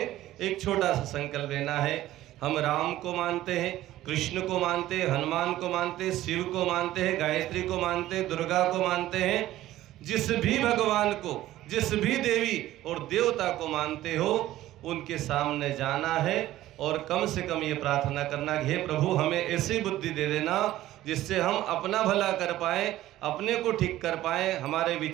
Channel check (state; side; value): quieter; left; 14.8 dB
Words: एक छोटा सा संकल्प लेना है। हम राम को मानते हैं, कृष्ण को मानते हैं, हनुमान को मानते हैं, शिव को मानते हैं, गायत्री को मानते हैं, दुर्गा को मानते हैं। जिस भी भगवान को, जिस भी देवी और देवता को मानते हो, उनके सामने जाना है और कम से कम ये प्रार्थना करना कि हे प्रभु हमें ऐसी बुद्धि दे देना जिससे हम अपना भला कर पाए, अपने को ठीक कर पाए, हमारे